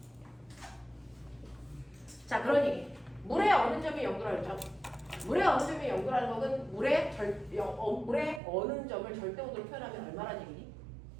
자, 그러니 물의 어느 점이 0도라 그랬죠? 물의 어느 점이 0도라는 것은 물의 어느 점을 절대 온도로 표현하면 얼마나 얘기니?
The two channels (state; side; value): drops out; left; at 8.4 s